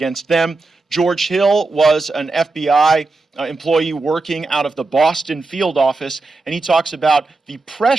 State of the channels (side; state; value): left; quieter; 3.5 dB